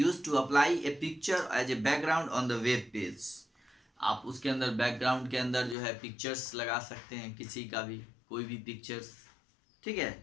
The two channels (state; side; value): drops out; right; at 5.8 s